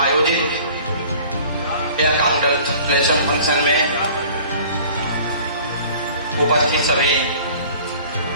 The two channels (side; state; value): both; inverted; correlation -0.48